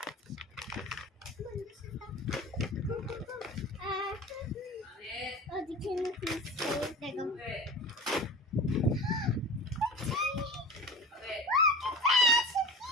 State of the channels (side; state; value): both; normal; correlation 0.33